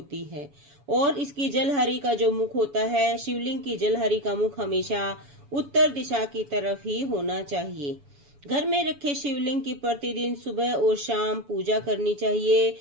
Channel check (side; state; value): left; late; 7.0 ms